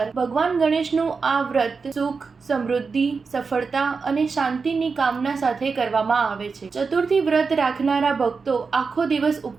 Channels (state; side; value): quieter; left; 4.9 dB